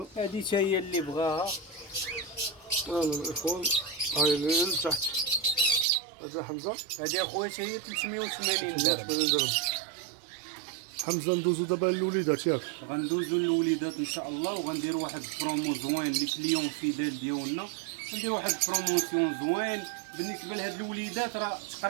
هذه حتى هي اللي بغاها. الاخوان هاي اللي لتحت. هذا حمزه، هذه اخويا حتى هي 380 درهم. حمزه ندوزو دابا للوليدات ياك. غندوزو للوليدات ان شاء الله، وغنديروا واحد البرومو زوين لي كليون فيدال ديالنا. ندير واحد البروموسيون زوين بالنسبه لهاد الوليدات. راه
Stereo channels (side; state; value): left; drops out; at 5.9 s